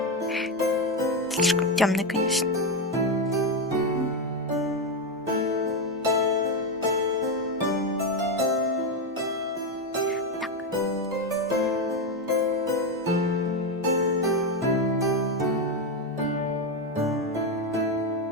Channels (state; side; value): normal; both; correlation 0.10